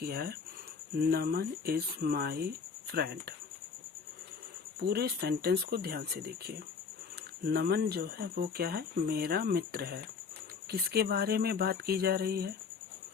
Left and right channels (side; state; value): right; quieter; 5.5 dB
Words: है नमन इज माई फ्रेंड। पूरे सेंटेंस को ध्यान से देखिए। नमन जो है वो क्या है, मेरा मित्र है। किसके बारे में बात की जा रही है,